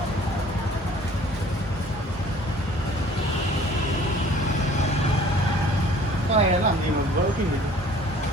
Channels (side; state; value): both; normal; correlation 0.52